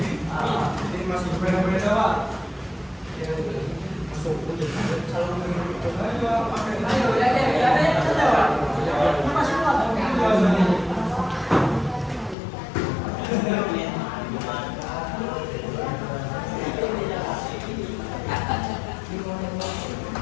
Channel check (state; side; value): drops out; right; at 12.4 s